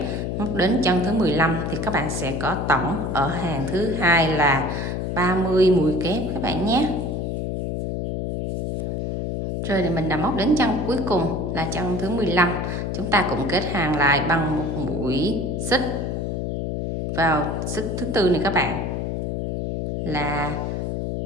móc đến chân thứ 15 thì các bạn sẽ có tổng ở hàng thứ hai là 30 mũi kép các bạn nhé. Rồi thì mình đã móc đến chân cuối cùng là chân thứ 15. Chúng ta cũng kết hàng lại bằng một mũi xích vào xích thứ tư này các bạn. Là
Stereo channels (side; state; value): left; noise; hum, 2 dB below the sound